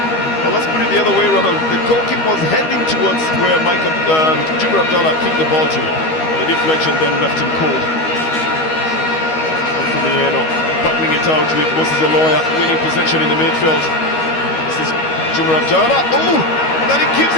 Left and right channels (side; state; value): right; late; 13 ms